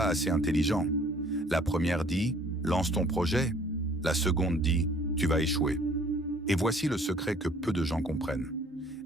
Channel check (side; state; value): both; normal; correlation 0.56